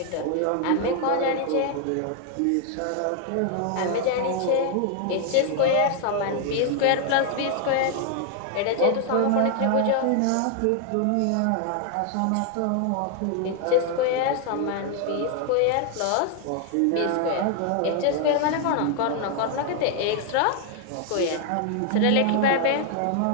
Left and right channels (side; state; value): both; different; correlation 0.00